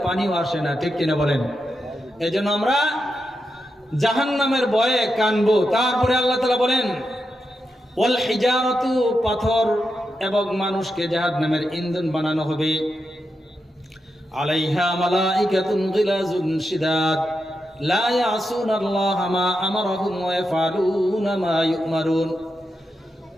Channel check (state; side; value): normal; both; correlation 0.86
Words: পানিও আসে না, ঠিক কিনা বলেন? এই জন্য আমরা জাহান্নামের ভয়ে কানবো। তারপরে আল্লাহ তাআলা বলেন, ওয়াল হিজারাতু, পাথর এবং মানুষকে জাহান্নামের ইন্ধন বানানো হবে। আলাইহা মালাইকাতুন গিলাজুন শিদাদ লা ইয়াসুনাল্লাহা মা আমারাহুম ওয়া ইয়াফআলুনা মা ইউমারুন।